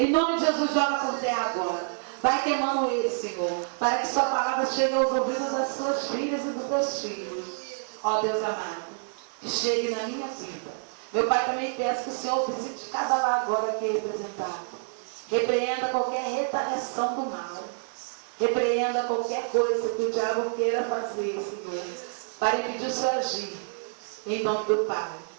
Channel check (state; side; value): silent; left; 58 dB below the other